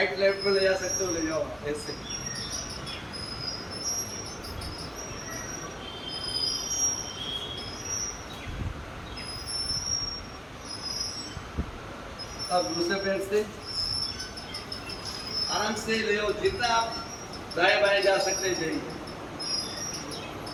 लेफ्ट में ले जा सकते हो ले जाओ, ऐसे। अब दूसरे पैर से आराम से ले जाओ, जितना आप दाएं बाएं जा सकते जाइए।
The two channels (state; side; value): identical; both; correlation 1.00